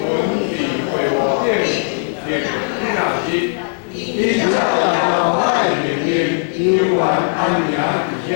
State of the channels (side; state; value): right; silent; digital silence